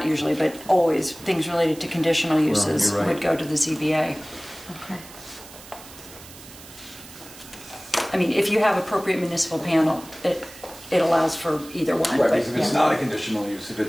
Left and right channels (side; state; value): right; noise; hiss, 18 dB below the sound